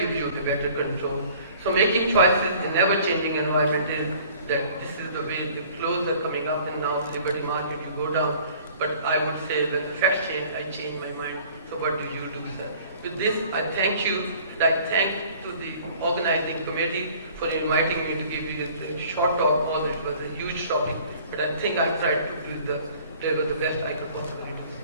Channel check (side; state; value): both; inverted; correlation -0.51